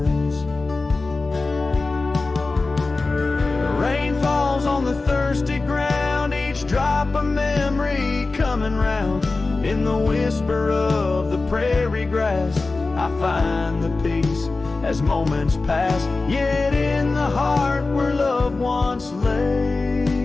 The rain falls on the thirsty ground, each drop a memory coming round. In the whisper of the prairie grass I find the peace as moments pass. Yet in the heart where love once lay,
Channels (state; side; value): quieter; right; 3.6 dB